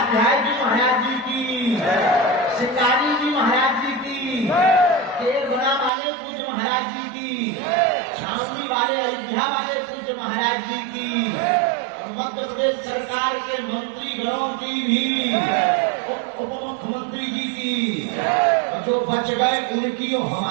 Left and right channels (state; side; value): drops out; left; at 5.9 s